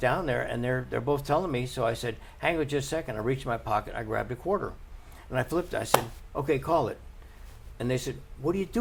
there, and they're both telling me. So I said, "Hang on just a second." I reached in my pocket, I grabbed a quarter, and I flipped it. I said, "Okay, call it." And they said, "What are you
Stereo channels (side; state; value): both; identical; correlation 1.00